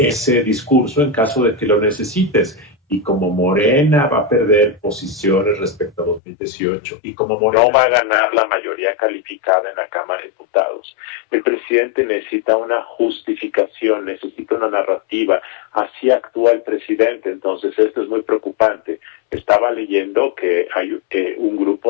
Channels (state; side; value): drops out; right; at 6.2 s